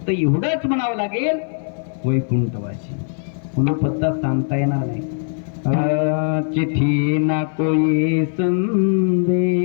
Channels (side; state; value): right; silent; 61 dB below the other